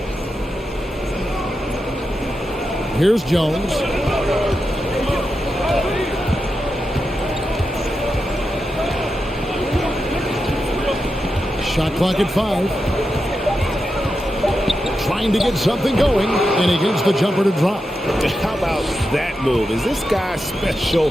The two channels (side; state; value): both; normal; correlation 0.88